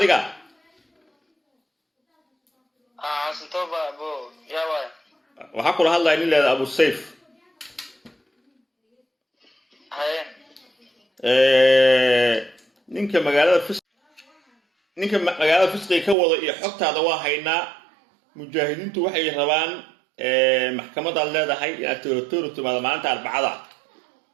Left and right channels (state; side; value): drops out; left; at 16.2 s